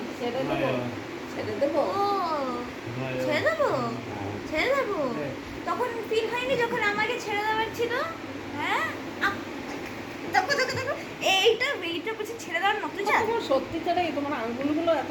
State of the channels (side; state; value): both; identical; correlation 1.00